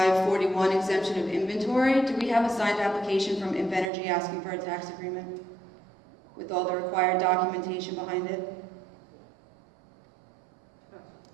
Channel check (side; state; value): left; drops out; at 3.9 s